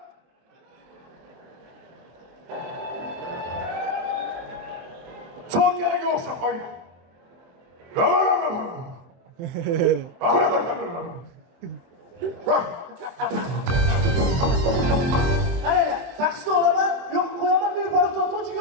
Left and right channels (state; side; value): late; left; 24 ms